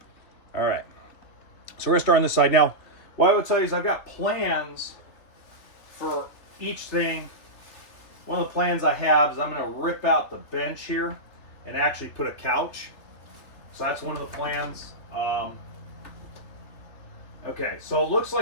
All right. So we're gonna start on this side. Now, what I would tell you is I've got plans for each thing. One of the plans I have is I'm gonna rip out the bench here and actually put a couch. So that's one of the plans. Okay, so it looks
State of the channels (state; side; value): late; right; 3.3 ms